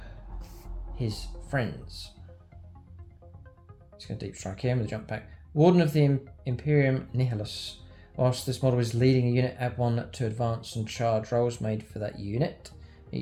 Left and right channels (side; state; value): both; identical; correlation 1.00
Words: his friends? He's going to deep strike him with a jump back. Warden of the Imperium Nihilus. Whilst this model is leading a unit, add 1 to advance and charge rolls made for that unit.